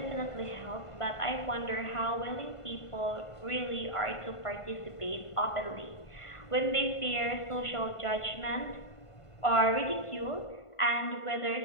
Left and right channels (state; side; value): late; right; 1.5 ms